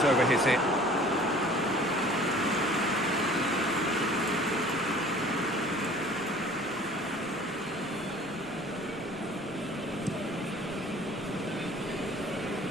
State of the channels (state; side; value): noise; left; rumble, 25 dB below the sound